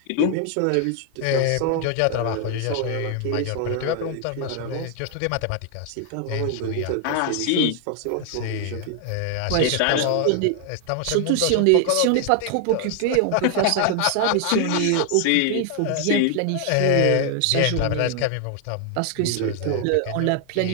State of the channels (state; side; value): different; both; correlation 0.00